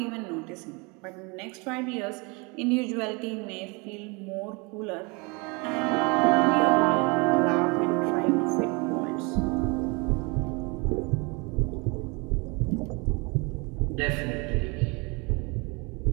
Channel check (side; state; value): left; quieter; 29.2 dB